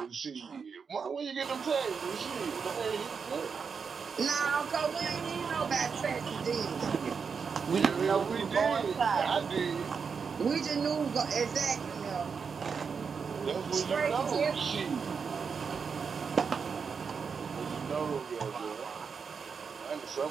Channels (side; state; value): left; quieter; 5.8 dB